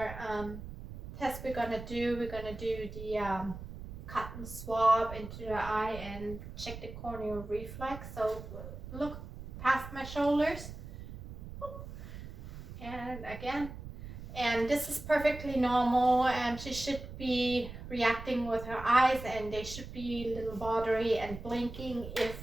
test we're gonna do. We're gonna do the cotton swab into the eye and check the corneal reflex. So look past my shoulders, and again, and this is perfectly normal, and she should be reacting with her eyes, and they should be a little watery and blinking.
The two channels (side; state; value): right; noise; rumble, 11 dB below the sound